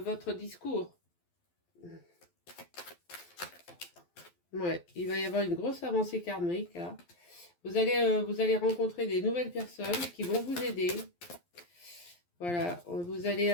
discours. Ouais, il va y avoir une grosse avancée karmique là. Vous allez rencontrer des nouvelles personnes qui vont vous aider. Voilà, vous allez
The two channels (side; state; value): right; late; 12 ms